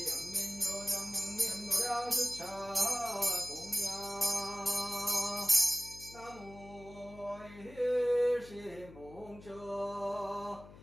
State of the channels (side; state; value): left; noise; hum, 18 dB below the sound